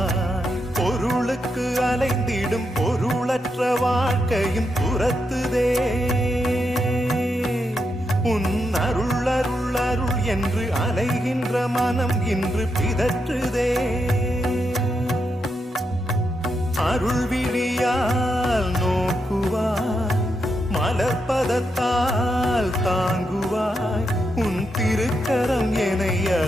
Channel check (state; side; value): normal; both; correlation 0.83